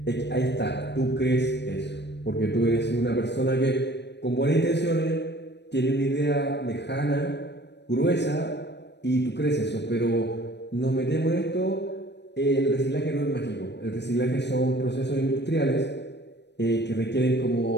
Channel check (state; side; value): late; right; 0.50 ms